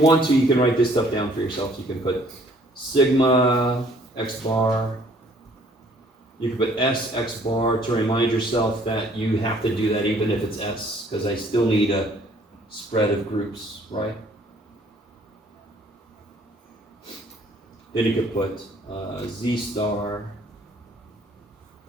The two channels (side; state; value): both; normal; correlation 0.60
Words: to, you can write this stuff down for yourself. You can put sigma x bar, you can put s x bar to remind yourself that you have to do that even if it's s, because I still need a spread of groups, right? Then you could put z star,